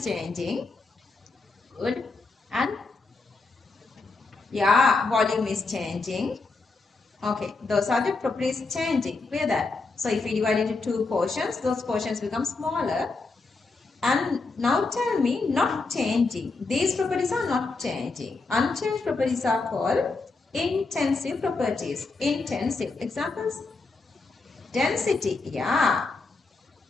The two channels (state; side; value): quieter; right; 3.8 dB